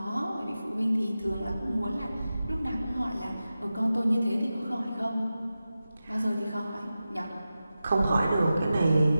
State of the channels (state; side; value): inverted; both; correlation -0.93